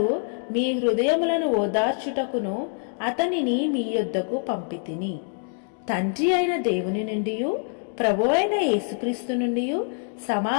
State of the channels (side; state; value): right; silent; 62 dB below the other